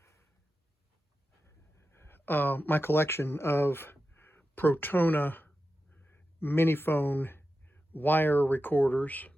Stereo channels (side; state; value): both; normal; correlation 0.91